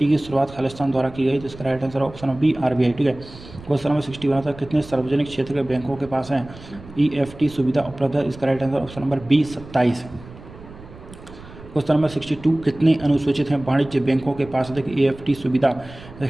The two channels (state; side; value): noise; right; rumble, 18 dB below the sound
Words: की शुरुआत खालिस्तान द्वारा की गई, तो इसका right answer option B, RBI, ठीक है। क्वेश्चन नंबर 61 तक कितने सार्वजनिक क्षेत्र के बैंकों के पास है EFT सुविधा उपलब्ध है, इसका right answer option number B, 27। Question number 62 कितने अनुसूचित हैं वाणिज्य बैंकों के पास EFT सुविधा